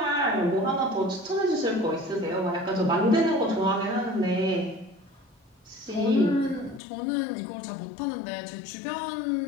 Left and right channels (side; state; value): right; drops out; at 6.8 s